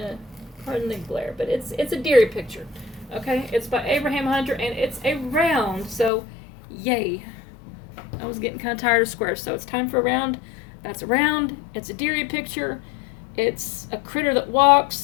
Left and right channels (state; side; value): drops out; right; at 6.1 s